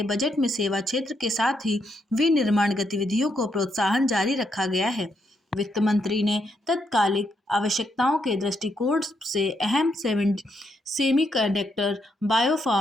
बजट में सेवा क्षेत्र के साथ ही विनिर्माण गतिविधियों को प्रोत्साहन जारी रखा गया है। वित्त मंत्री ने तत्कालिक आवश्यकताओं के दृष्टिकोण से अहम सेमीकंडक्टर,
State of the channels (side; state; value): both; normal; correlation 0.78